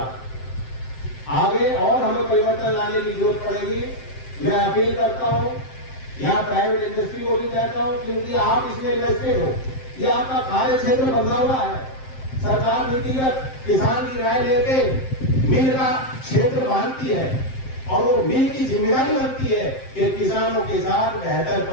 आगे और हमें परिवर्तन लाने की जरूरत पड़ेगी। मैं अपील करता हूं, यहाँ प्राइवेट इंडस्ट्री को भी कहता हूं, क्योंकि आप इसमें इन्वेस्टेड हो, ये आपका कार्य क्षेत्र बदला हुआ है। सरकार नीतिगत किसान की राय लेके मिल का क्षेत्र बांधती है, और वो मिल की जिम्मेदारी बनती है कि किसानों के साथ बेहतर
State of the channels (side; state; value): right; late; 7.6 ms